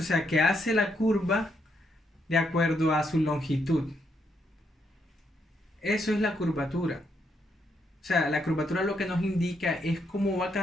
o sea, que hace la curva de acuerdo a su longitud. Eso es la curvatura. O sea, la curvatura lo que nos indica es cómo va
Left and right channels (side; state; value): both; normal; correlation 0.77